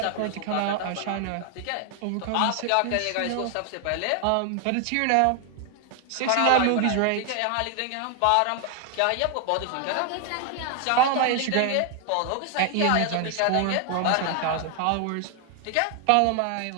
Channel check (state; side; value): different; both; correlation 0.00